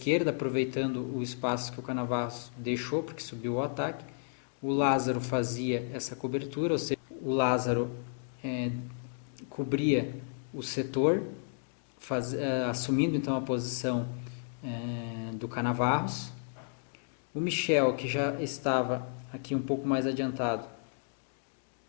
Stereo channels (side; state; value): right; silent; digital silence